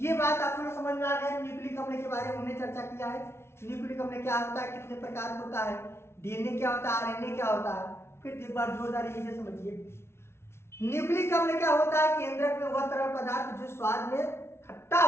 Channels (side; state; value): right; late; 0.12 ms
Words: बात आप लोग समझ में आ गया। न्यूक्लिक अम्ल के बारे में हमने चर्चा किया है। न्यूक्लिक अम्ल क्या होता है, कितने प्रकार होता है, डीएनए क्या होता है, आरएनए क्या होता है। फिर एक बार जोरदार ये समझिए, न्यूक्लिक अम्ल क्या होता है? केंद्रक में वह तरल पदार्थ जो स्वाद में खट्टा